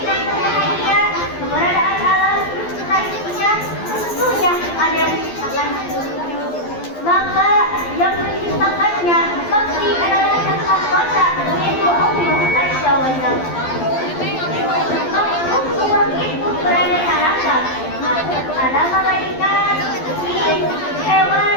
berbahagia, keberadaan alam selanjutnya tentunya ada yang menciptakan. Maka yang menciptakannya pasti adalah Yang Maha Kuasa, yaitu Allah Azza wa Jalla. Allah itu beraneka ragam. Ada malaikat, jin, hewan,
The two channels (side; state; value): right; late; 12 ms